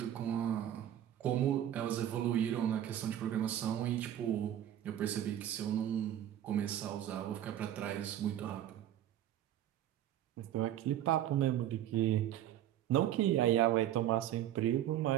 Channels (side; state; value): left; quieter; 11.6 dB